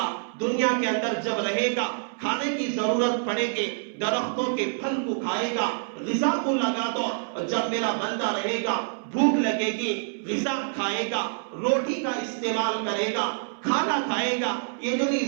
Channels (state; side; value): silent; left; 61 dB below the other